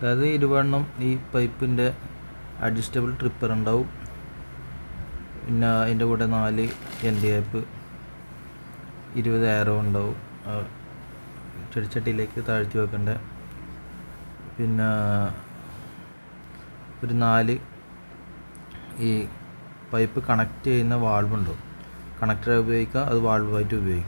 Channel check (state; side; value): inverted; both; correlation -1.00